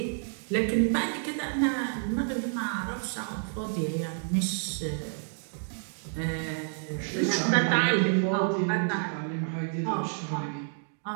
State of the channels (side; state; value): left; silent; 58 dB below the other